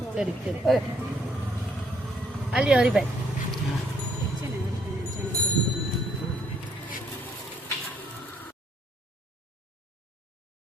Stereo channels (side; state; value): both; normal; correlation 0.68